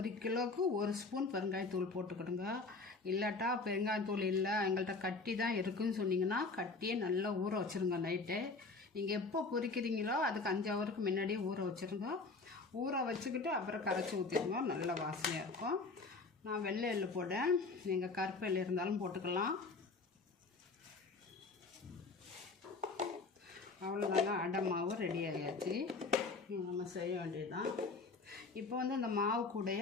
கிலோவுக்கு 1 ஸ்பூன் பெருங்காயத்தூள் போட்டுக்கிடுங்க. இல்லாட்டா பெருங்காயத்தூள் இல்லை, எங்கள்கிட்ட கட்டி தான் இருக்குதுன்னு சொன்னீங்கன்னா கட்டியே நல்லா ஊற வச்சுருங்க. நைட்டு நீங்கள் எப்போ பொரிக்கிறீங்களோ அதுக்கு 5 ஹவருக்கு முன்னாடியே ஊற வச்சுருங்க. ஊற வச்சுக்கிட்டு அப்புறம் கரைச்சி ஊற்றிடுங்க, நல்ல வாசனையாக இருக்கும். நான் வெள்ளை எள்ளு போட்டேன், நீங்கள் கருப்பு எள்ளு இருந்தாலும் போட்டுக்கலாம். அவ்வளோதாங்க, அடை மாவு ரெடி ஆகியாச்சு. நம்ம செய்ய வேண்டியதுதான். இப்போ இந்த மாவு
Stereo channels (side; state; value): right; quieter; 3.9 dB